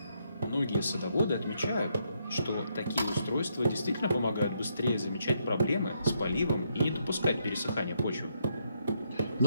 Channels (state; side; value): inverted; both; correlation -0.77